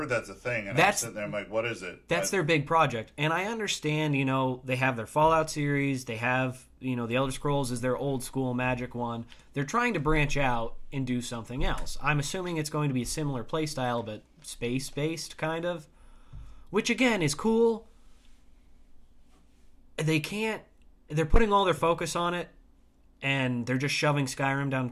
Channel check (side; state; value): both; identical; correlation 1.00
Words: that's a thing, and I'm sitting there, I'm like, what is it? That's their big project. And I understand, they have their Fallout series, they have, the Elder Scrolls is their old school Magic one. They're trying to branch out and do something else. I'm assuming it's going to be a similar playstyle, but space-based, kind of. Which, again, is cool. They're putting all their focus on it, and they're just shoving Skyrim down